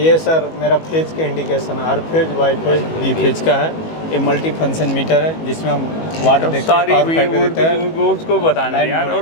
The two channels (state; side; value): late; right; 19 ms